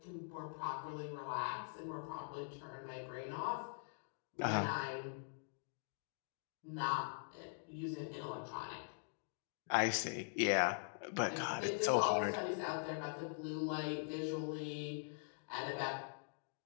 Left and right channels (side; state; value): right; silent; digital silence